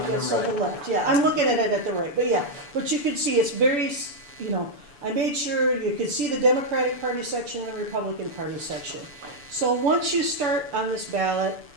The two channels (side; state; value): left; late; 6.9 ms